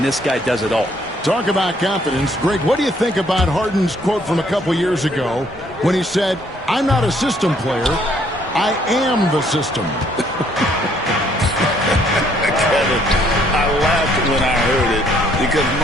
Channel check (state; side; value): normal; both; correlation 0.66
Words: this guy does it all. Talk about confidence. Greg, what do you think about Harden's quote from a couple years ago when he said, "I'm not a system player, I am the system"? Kevin, I laughed when I heard it because